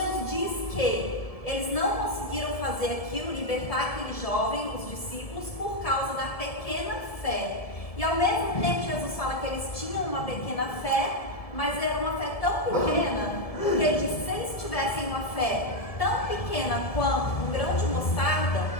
diz que eles não conseguiram fazer aquilo, libertar aquele jovem, os discípulos, por causa da pequena fé. E ao mesmo tempo Jesus fala que eles tinham uma pequena fé, mas era uma fé tão pequena, que ele diz que se eles tivessem uma fé tão pequena quanto um grão de mostarda,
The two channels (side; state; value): right; late; 1.7 ms